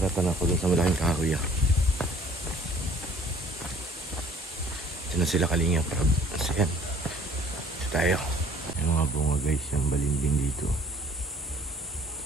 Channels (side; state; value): both; normal; correlation 0.55